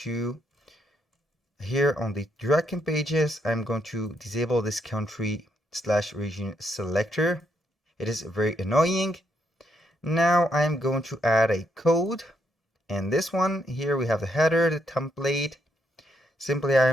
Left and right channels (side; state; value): both; normal; correlation 0.77